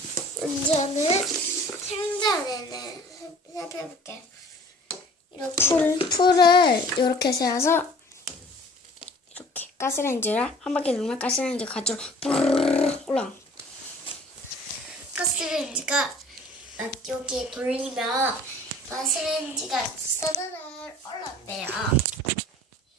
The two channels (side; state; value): both; normal; correlation 0.49